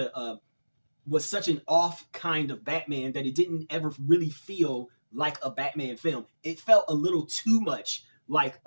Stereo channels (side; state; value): both; inverted; correlation -1.00